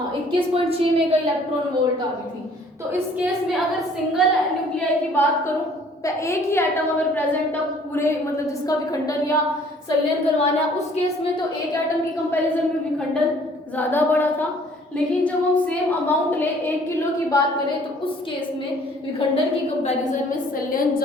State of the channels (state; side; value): normal; both; correlation 0.57